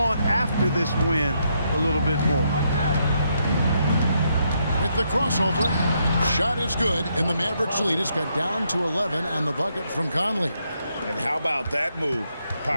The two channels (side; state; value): both; inverted; correlation -0.77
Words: after this win a little bit more. With the crossover, shot is good, and the Mavericks lead is cut down to 11 on the bucket from Conley. And how about that move?